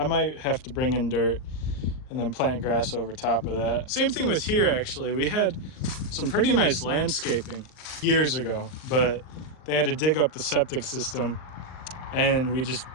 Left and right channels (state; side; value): late; right; 39 ms